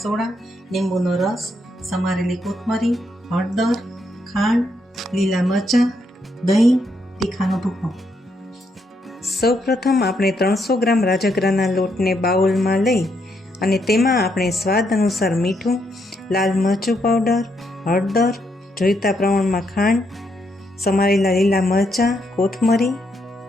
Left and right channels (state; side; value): normal; both; correlation 0.77